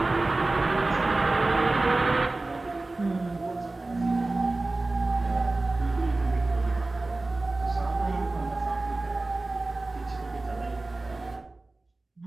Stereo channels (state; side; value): quieter; left; 3.1 dB